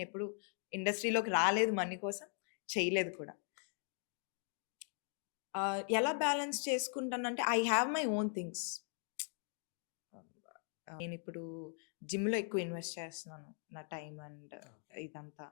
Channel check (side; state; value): right; silent; 51 dB below the other